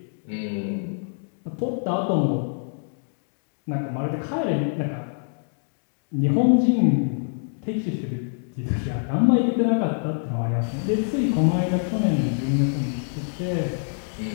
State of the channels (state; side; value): silent; right; digital silence